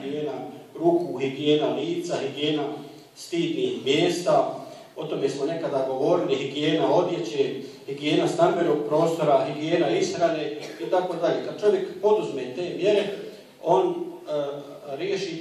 ruku, higijena lica, higijena stidnih mjesta. O tome smo nekada govorili, higijena odjeće, higijena stambenog prostora, higijena ishrane i tako dalje. Kad čovjek poduzme te mjere, on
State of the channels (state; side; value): identical; both; correlation 1.00